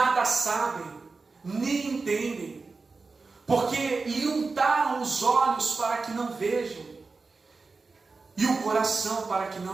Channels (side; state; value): left; quieter; 4.1 dB